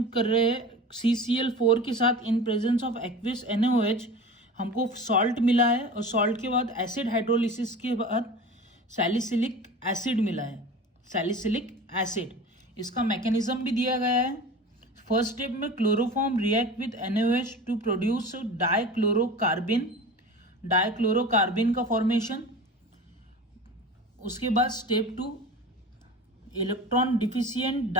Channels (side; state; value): both; normal; correlation 0.35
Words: कर रहे हैं CCl4 के साथ in presence of aqueous NaOH, हमको सॉल्ट मिला है और सॉल्ट के बाद एसिड हाइड्रोलिसिस के बाद सैलिसिलिक एसिड मिला है, सैलिसिलिक एसिड। इसका मैकेनिज्म भी दिया गया है। फर्स्ट स्टेप में chloroform react with NaOH to produce dichlorocarbene, dichlorocarbene का फॉर्मेशन। उसके बाद step 2, electron deficient